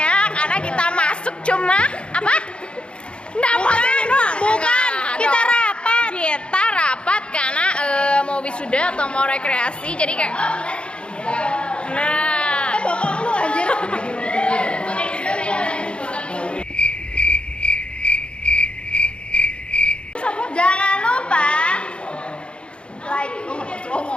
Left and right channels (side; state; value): right; late; 0.056 ms